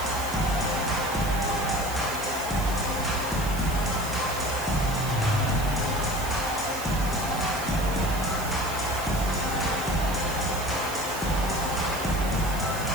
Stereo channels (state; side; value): noise; right; hiss, 10 dB below the sound